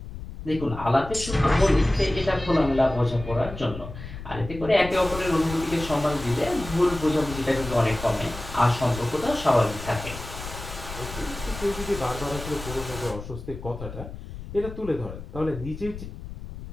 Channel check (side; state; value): left; noise; rumble, 11 dB below the sound